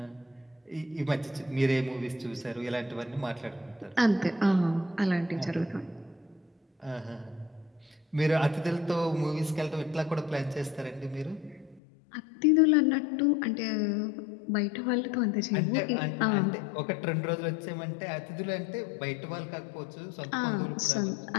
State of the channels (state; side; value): drops out; right; at 11.8 s